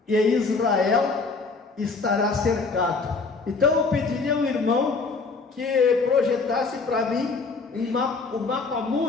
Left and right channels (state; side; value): quieter; right; 4.3 dB